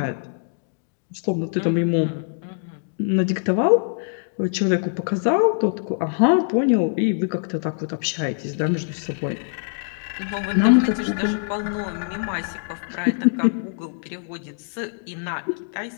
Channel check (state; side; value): silent; right; digital silence